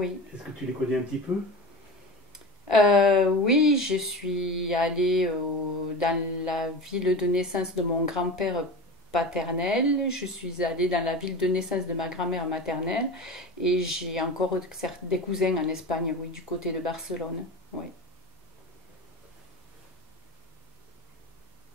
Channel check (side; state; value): both; normal; correlation 0.29